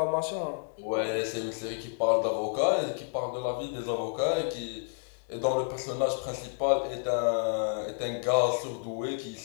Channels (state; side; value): silent; right; digital silence